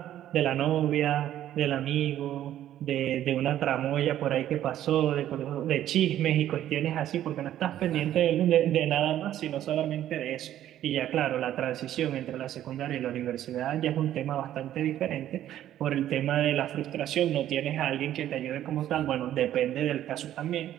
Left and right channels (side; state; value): left; quieter; 12.1 dB